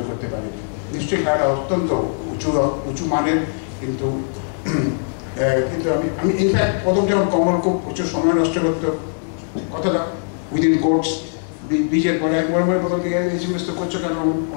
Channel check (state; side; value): silent; right; digital silence